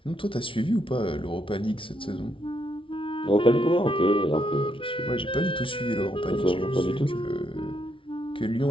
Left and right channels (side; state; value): right; late; 0.25 ms